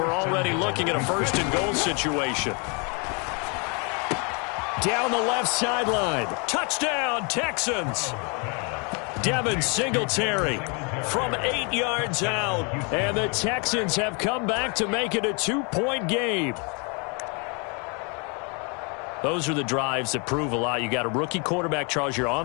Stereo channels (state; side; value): quieter; right; 34.0 dB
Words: already looking at a first-and-goal situation. Down the left sideline. Touchdown, Texans. Devin Singletary from 8 yards out. And the Texans have come back to make it a 2-point game. Those are the drives that prove a lot. You got a rookie quarterback, Charles. You're